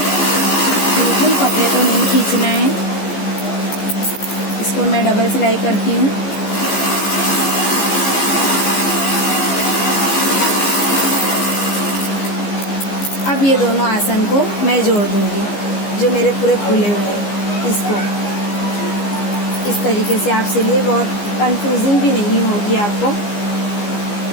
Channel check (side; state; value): right; late; 15 ms